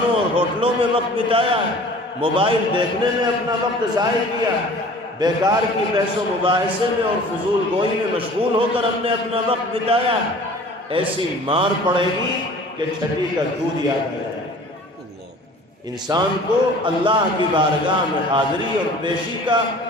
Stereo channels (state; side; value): normal; both; correlation 0.46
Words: اور ہوٹلوں میں وقت بتایا ہے، موبائل دیکھنے میں اپنا وقت ضائع کیا ہے، بیکار کی بحث و مباحثے میں اور فضول گوئی میں مشغول ہو کر ہم نے اپنا وقت بتایا ہے، ایسی مار پڑے گی کہ چھٹی کا دودھ یاد آ جائے۔ انسان کو اللہ کی بارگاہ میں حاضری اور پیشی کا